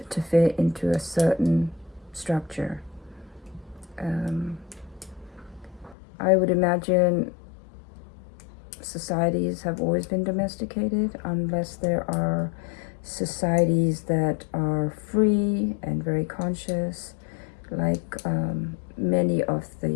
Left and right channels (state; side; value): drops out; right; at 6.0 s